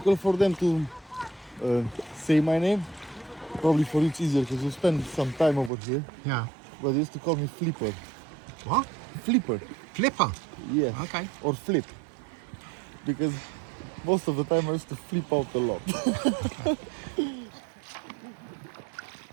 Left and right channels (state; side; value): drops out; left; at 5.7 s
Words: for them to say my name. Probably for you it's easier because you spend some time over here. Yeah. But they used to call me Flipper. What? Flipper. Flipper. Yes. Okay. Or Flip. Because most of the time I used to flip out a lot.